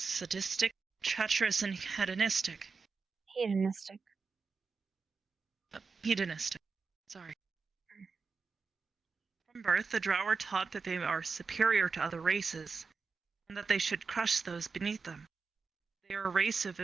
treacherous, and hedonistic. Hedonistic. Sorry. From birth, the Drow are taught that they are superior to other races, and that they should crush those beneath them. They are a race of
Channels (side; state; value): left; quieter; 4.9 dB